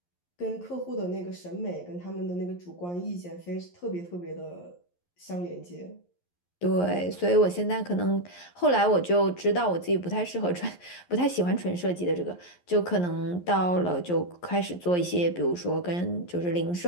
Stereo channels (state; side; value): late; right; 11 ms